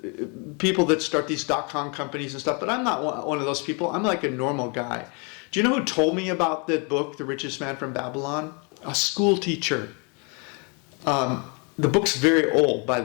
People that start these .com companies and stuff, but I'm not one of those people. I'm like a normal guy. Do you know who told me about that book, The Richest Man from Babylon? A school teacher. The book's very old, by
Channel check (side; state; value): right; quieter; 34.0 dB